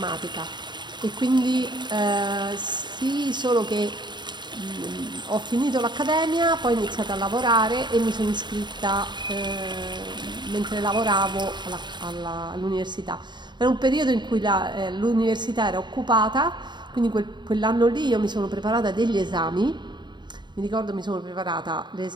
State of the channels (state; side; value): late; left; 0.22 ms